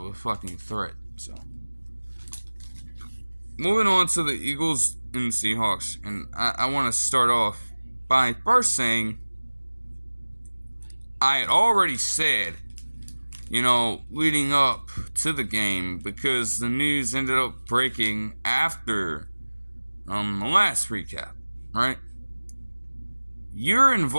a fucking threat. So, moving on to the Eagles and Seahawks. And I want to start off by first saying I had already said, leading up to the game, because the news ended up breaking after the last recap, right? You're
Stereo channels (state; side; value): inverted; both; correlation -1.00